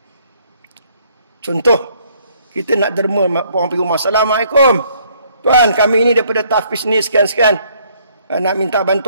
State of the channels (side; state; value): both; inverted; correlation -0.64